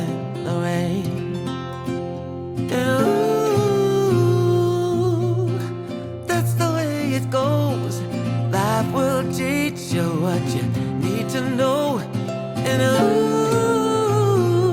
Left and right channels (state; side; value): identical; both; correlation 1.00